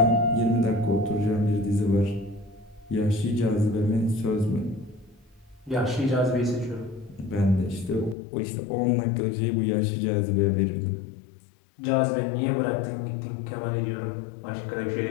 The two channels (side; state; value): right; drops out; at 8.2 s